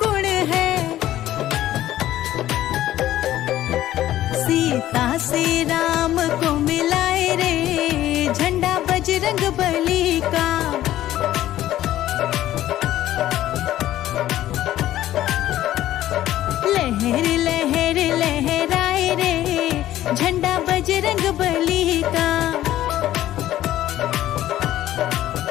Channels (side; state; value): right; quieter; 13.6 dB